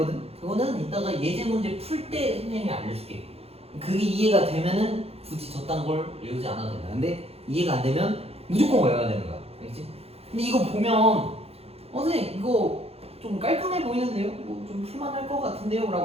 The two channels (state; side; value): late; left; 0.29 ms